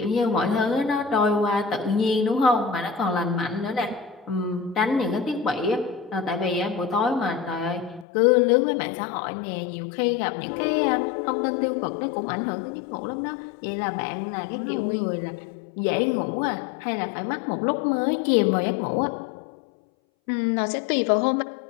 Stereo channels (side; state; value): right; drops out; at 8.1 s